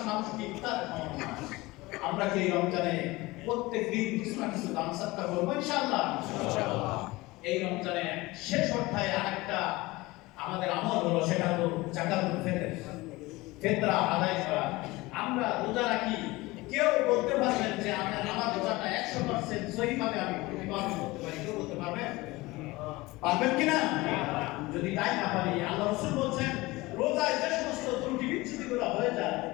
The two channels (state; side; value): quieter; right; 21.1 dB